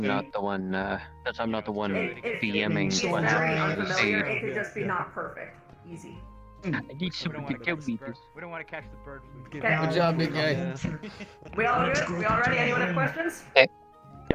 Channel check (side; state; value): both; identical; correlation 1.00